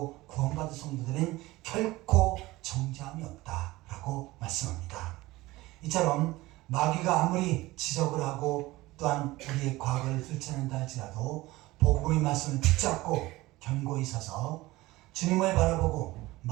구원받은 성도들은 결코 정죄함이 없다라고 말씀합니다. 이처럼 마귀가 아무리 지적을 하고 또한 우리의 과거를 들춰낸다 할지라도 복음의 말씀을 붙잡고 견고히 서서 주님을 바라보고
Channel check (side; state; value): left; quieter; 19.2 dB